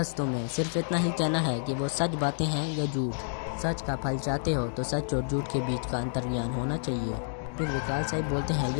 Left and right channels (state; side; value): silent; right; digital silence